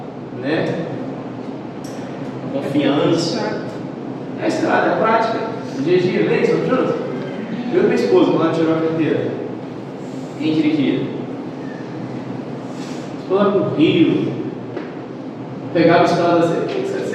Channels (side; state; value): both; identical; correlation 1.00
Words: né? Confiança. É a estrada, é a prática. O dia a dia, lembra? Estamos juntos? Eu e minha esposa, quando ela tirou a carteira, quem dirigia? Estou lá com o Rio, pegava a estrada assim.